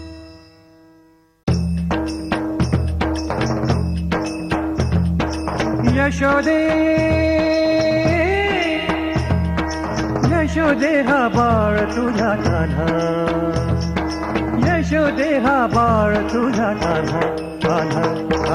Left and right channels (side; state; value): both; identical; correlation 1.00